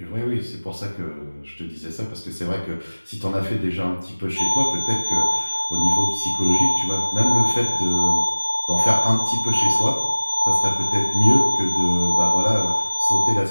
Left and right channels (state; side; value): inverted; both; correlation -1.00